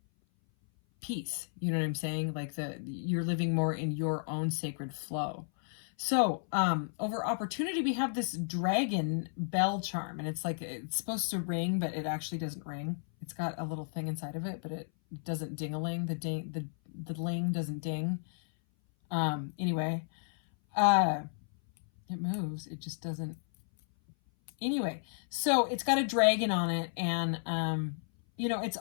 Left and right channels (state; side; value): silent; right; 56 dB below the other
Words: peace. You know what I'm saying? Like you're living more in your own sacred flow. So, over opportunity, we have this dragon bell charm, and it's like, it's supposed to ring, but it actually doesn't ring. It's got a little thing inside of it, but it doesn't ding-a-ling. The ling doesn't ding. Anyway, it moves. It just doesn't. Anyway, so it's got a dragon on it, and, it's